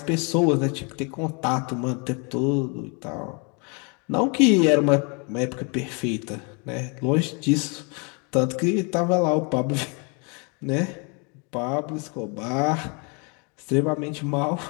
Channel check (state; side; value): quieter; right; 33.9 dB